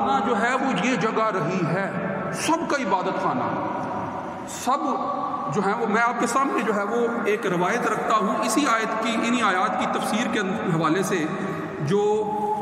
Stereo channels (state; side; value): identical; both; correlation 1.00